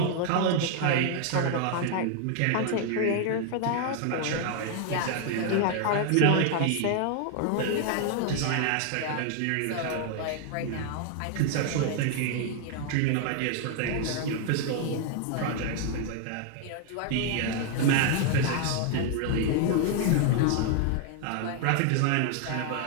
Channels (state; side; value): different; both; correlation 0.00